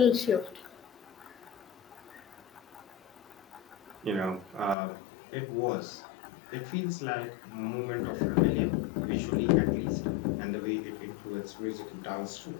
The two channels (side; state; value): right; drops out; at 4.8 s